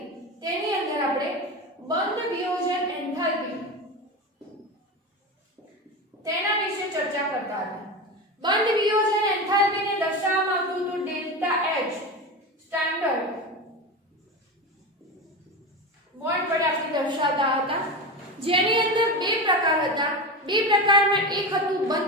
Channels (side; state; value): both; normal; correlation 0.23